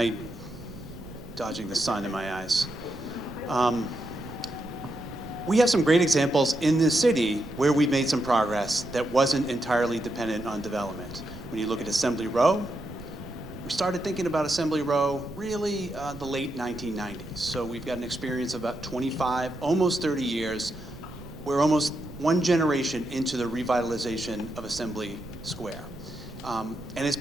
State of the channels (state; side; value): noise; right; rumble, 15 dB below the sound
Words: dodging the sun in my eyes. We have some great examples in this city where we've made some progress that wasn't entirely dependent on development. When you look at Assembly Row, we started thinking about Assembly Row really the late 1990s. So we've got an experience of about 25, almost 30 years. We're almost one generation into the revitalization of Assembly Square. And it's